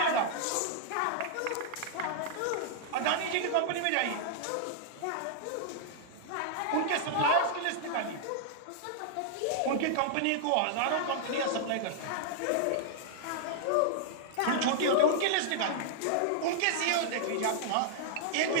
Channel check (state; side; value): different; both; correlation -0.01